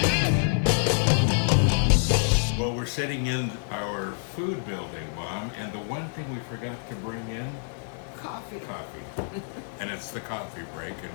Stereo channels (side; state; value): right; silent; 60 dB below the other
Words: Well, we're sitting in our food building, Mom, and the one thing we forgot to bring in, Coffee. coffee. And it's the coffee break,